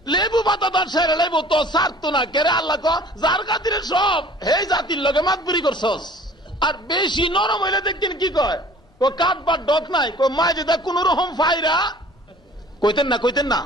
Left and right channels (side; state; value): both; normal; correlation 0.49